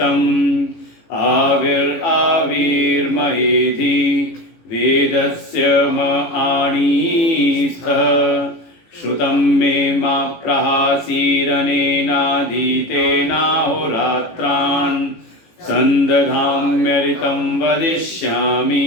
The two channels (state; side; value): late; right; 18 ms